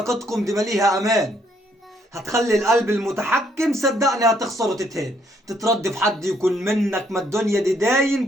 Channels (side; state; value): both; normal; correlation 0.69